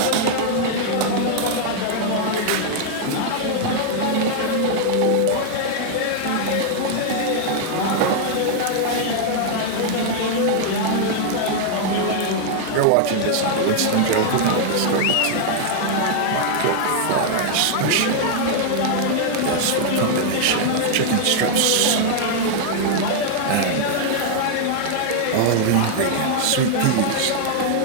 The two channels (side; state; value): both; different; correlation 0.00